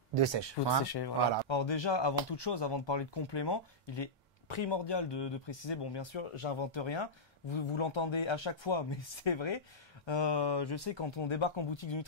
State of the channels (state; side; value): normal; both; correlation -0.12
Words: de sèche? Pour sécher, voilà. Alors déjà, avant toute chose, avant de parler de compléments, il est primordial de préciser, bon bien sûr, j'invente rien, vous l'entendez à chaque fois, mais c'est vrai. Je sais, quand on débarque en boutique de